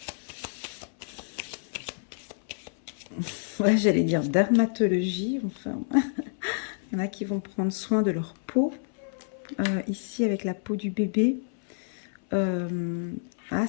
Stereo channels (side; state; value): right; silent; 59 dB below the other